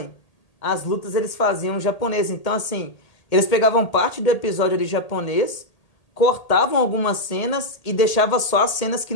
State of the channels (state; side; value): late; right; 1.8 ms